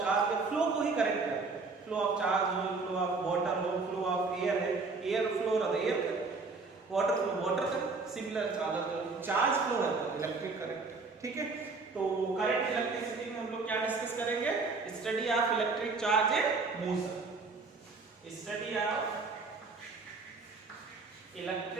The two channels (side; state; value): left; quieter; 4.1 dB